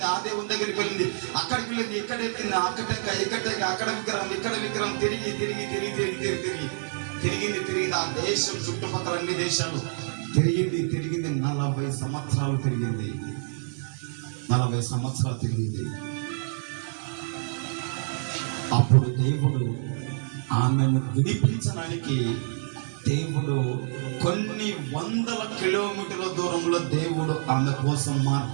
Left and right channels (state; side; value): silent; left; digital silence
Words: ఆ దేవుని దగ్గరికి వెళ్ళింది, అక్కడికి వెళ్ళింది, ఇక్కడ ఎక్కింది, అక్కడ విగ్రహం, ఇక్కడ విగ్రహం, తిరిగింది. ఆ దేశం చుట్టుపక్కల అన్ని దేశాలు తిరిగింది. 40 సంవత్సరాలు తిరిగింది. 40 సంవత్సరాలు తిరిగింది. అప్పుడు దేవుడు ఆమెను విడిపించడానికి దేవుడు కొన్ని వందల కిలోమీటర్ల దూరంలో దేవుడు ఆమె కోసం